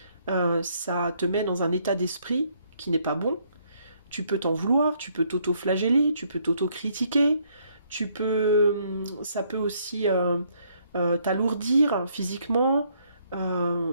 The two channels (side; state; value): both; inverted; correlation -0.69